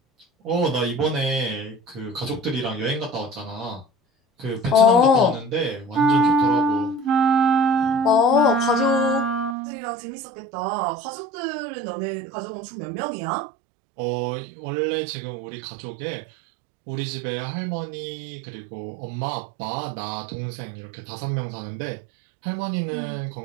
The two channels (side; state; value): left; drops out; at 9.6 s